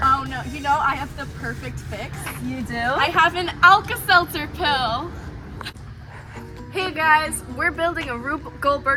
Oh no, you know I have the perfect fix. You do? I have an Alka-Seltzer pill. Hey guys, we're building a Rube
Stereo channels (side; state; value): both; identical; correlation 1.00